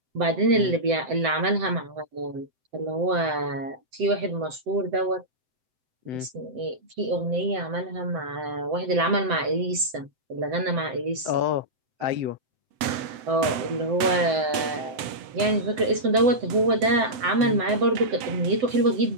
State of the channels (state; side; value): late; left; 7.8 ms